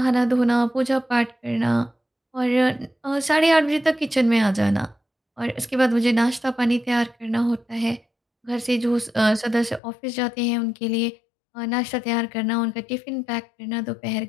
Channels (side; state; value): right; drops out; at 9.8 s